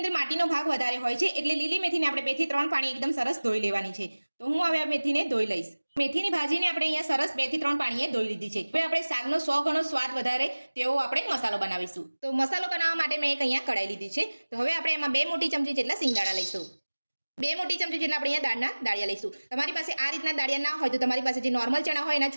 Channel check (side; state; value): both; inverted; correlation -1.00